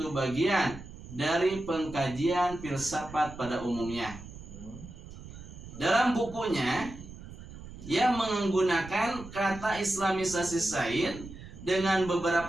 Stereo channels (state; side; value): noise; right; rumble, 14 dB below the sound